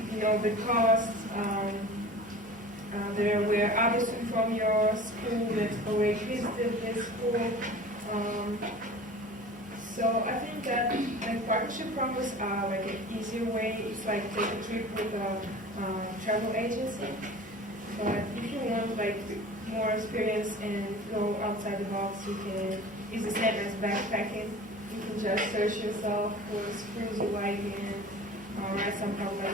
the costs. There were others from your school that already visited this school. So I think that partnership programs are like an easier way. It's like take a trip with a travel agency. But if you want like more experience and go outside the box, it's the same as backpacking. You can just search yourself for schools you like and write some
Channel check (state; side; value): normal; both; correlation 0.40